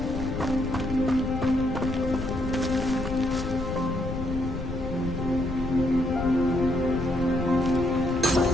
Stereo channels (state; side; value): noise; left; rumble, 6 dB below the sound